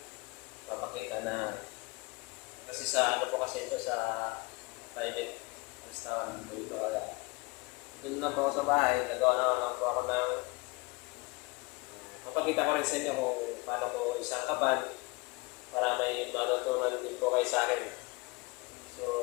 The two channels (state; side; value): quieter; right; 26.6 dB